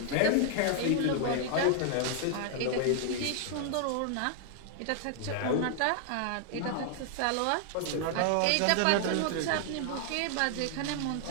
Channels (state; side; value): different; both; correlation 0.00